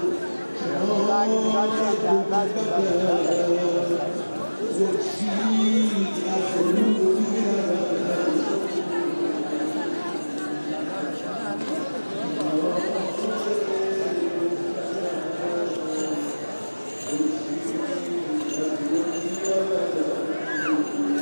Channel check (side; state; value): both; inverted; correlation -1.00